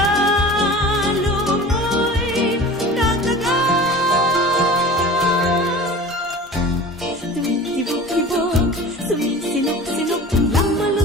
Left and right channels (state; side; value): normal; both; correlation 0.38